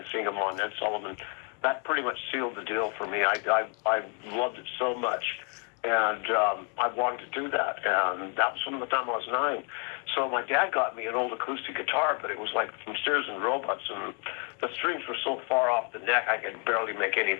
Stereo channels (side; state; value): right; quieter; 37.6 dB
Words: seeing them on Ed Sullivan. That pretty much sealed the deal for me. I loved it so much, and I wanted to do that. And that was from the time I was 9. So my dad got me an old acoustic guitar, but it was like from Sears and Roebuck's, and the strings were so far off the neck I could barely make